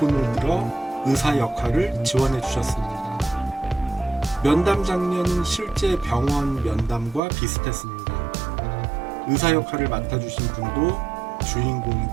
들어 의사 역할을 지원해 주셨습니다. 면담 장면은 실제 병원 면담과 비슷했습니다. 의사 역할을 맡아주신 분도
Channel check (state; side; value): drops out; left; at 7.2 s